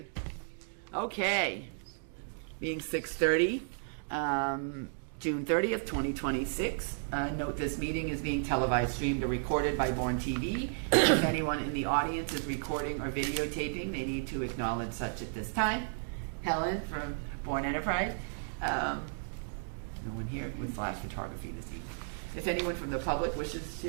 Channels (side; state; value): left; silent; digital silence